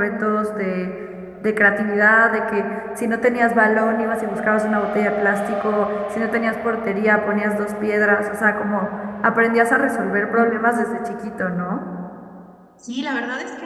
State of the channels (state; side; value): identical; both; correlation 1.00